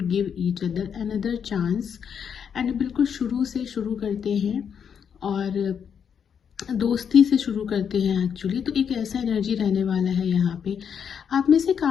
give each other another chance. And बिल्कुल शुरू से शुरू करते हैं और दोस्ती से शुरू करते हैं एक्चुअली। तो एक ऐसा एनर्जी रहने वाला है यहाँ पे। आप में से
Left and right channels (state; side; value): quieter; right; 7.5 dB